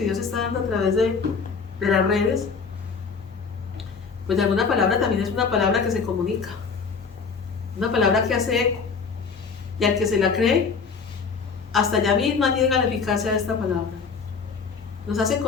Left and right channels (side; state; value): right; quieter; 5.3 dB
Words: Dios está dando a través de las redes, pues de alguna palabra también es una palabra que se comunica, una palabra que hace eco, y al que se la cree, hasta allá misma llega la eficacia de esta palabra. Nos hace